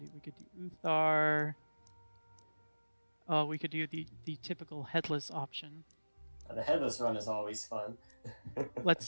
We could do Uthar. We could do the typical headless option. The headless run is always fun. Let's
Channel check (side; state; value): both; inverted; correlation -1.00